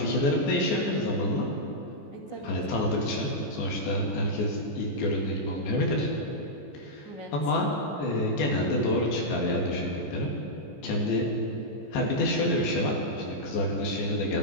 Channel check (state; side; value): late; right; 14 ms